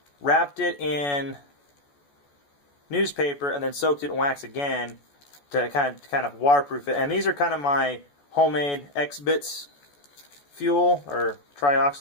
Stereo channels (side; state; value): right; late; 14 ms